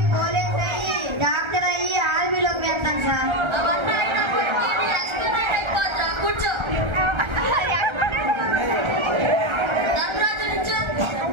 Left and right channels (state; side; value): late; left; 1.3 ms